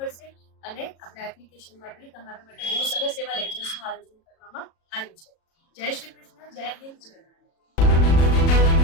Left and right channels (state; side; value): late; right; 37 ms